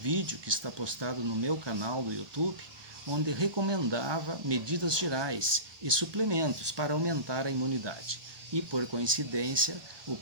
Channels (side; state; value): left; late; 1.2 ms